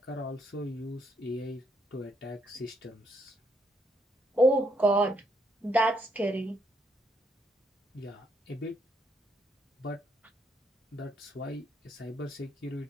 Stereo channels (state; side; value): normal; both; correlation 0.74